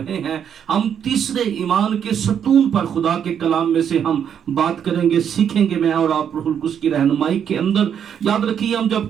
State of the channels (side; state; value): left; quieter; 8.4 dB